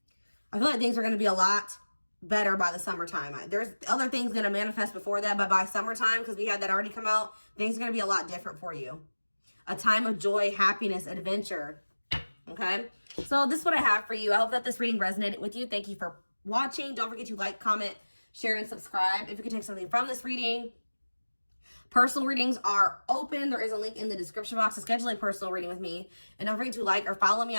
I feel like things are going to be a lot better by the summertime. There's other things going to manifest before that, but by summertime, because we had that already come out, things are going to be a lot different for you. A time of joy, happiness, adventure. Okay? So this is what I have for you. I hope that this reading resonated with you. Thank you for watching. Don't forget to like, comment, share, and subscribe. If you can take something from this reading. Personal readings are open. There is a link in the description box to schedule a personal reading with me. And don't forget to like or follow me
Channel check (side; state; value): both; inverted; correlation -1.00